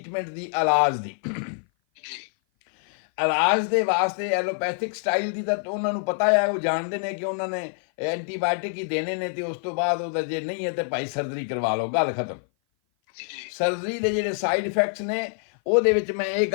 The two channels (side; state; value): right; silent; 56 dB below the other